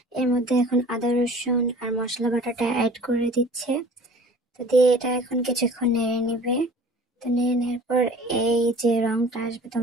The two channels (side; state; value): both; normal; correlation 0.46